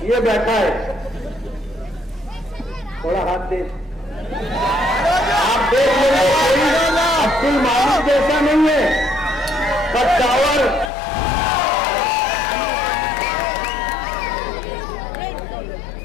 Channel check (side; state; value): right; drops out; at 10.9 s